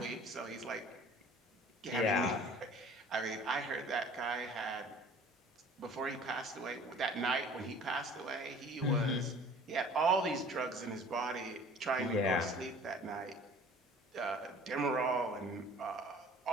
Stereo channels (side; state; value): both; normal; correlation 0.48